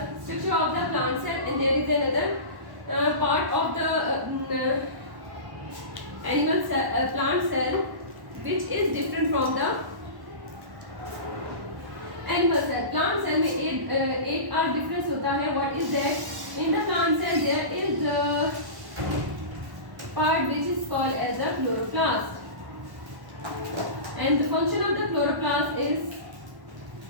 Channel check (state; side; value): late; left; 1.1 ms